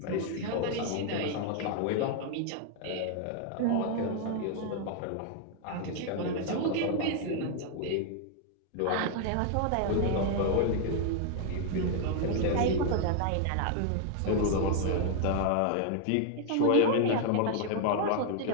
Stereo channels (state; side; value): different; both; correlation 0.00